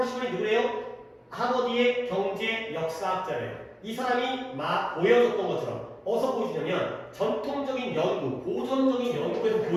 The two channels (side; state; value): both; identical; correlation 1.00